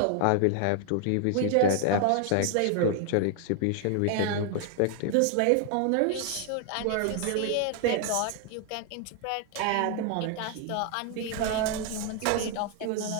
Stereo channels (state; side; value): different; both; correlation 0.00